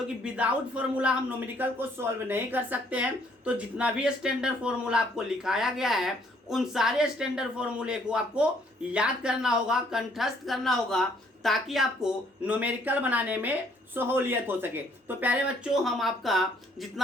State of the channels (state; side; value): normal; both; correlation 0.65